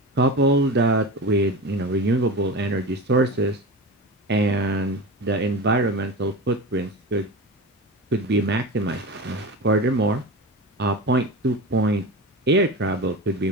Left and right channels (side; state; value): both; normal; correlation 0.28